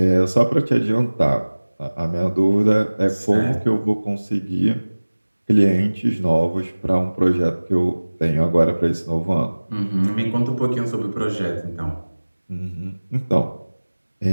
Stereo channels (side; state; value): both; inverted; correlation -1.00